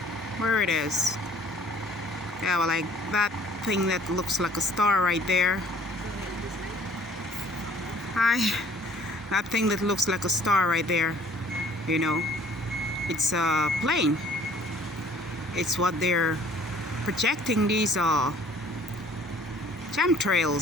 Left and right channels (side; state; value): both; normal; correlation 0.56